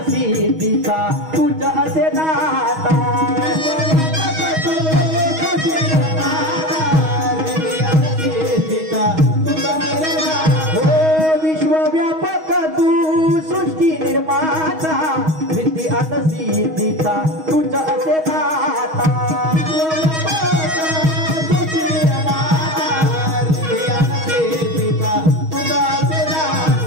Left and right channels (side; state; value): left; late; 6.3 ms